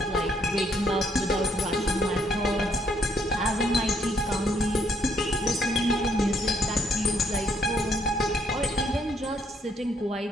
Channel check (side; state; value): both; normal; correlation 0.70